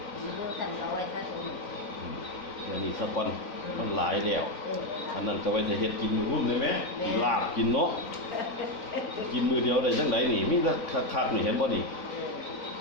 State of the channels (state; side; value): late; right; 4.0 ms